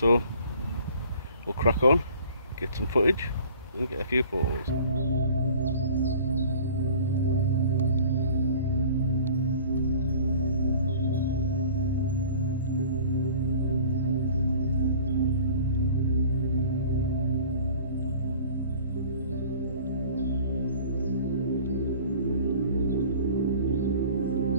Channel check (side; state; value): both; inverted; correlation -0.47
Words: we'll crack on, get some footage and get a few photos.